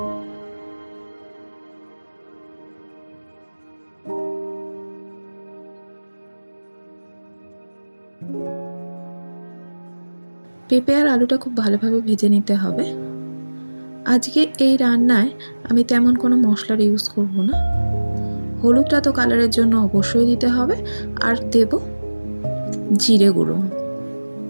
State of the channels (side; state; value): both; inverted; correlation -1.00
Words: পেঁপে আর আলুটা খুব ভালোভাবে ভেজে নিতে হবে। আজকে এই রান্নায় আমি তেমন কোনো মশলার ইউজ করব না। হলুদটা তো কালারের জন্য অবশ্যই দিতে হবে, আর দেব জিরে গুঁড়ো।